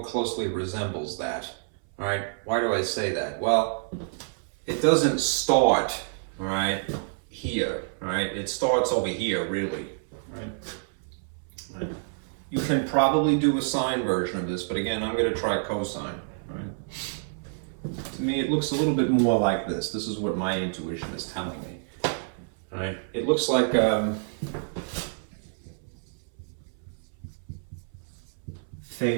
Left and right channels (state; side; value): silent; left; 59 dB below the other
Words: closely resembles that. All right, why do I say that? Well, it doesn't start, all right, here, all right? It starts over here, really, right? You can probably do a sine version of this, but again, I'm gonna try cosine, right? To me, it looks a little bit more like this. This is what my intuition is telling me, all right? It looks like